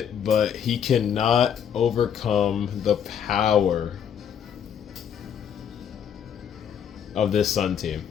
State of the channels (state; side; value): quieter; right; 8.4 dB